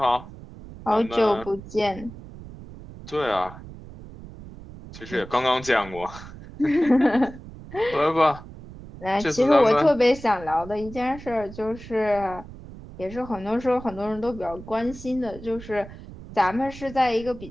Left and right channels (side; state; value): right; noise; rumble, 15 dB below the sound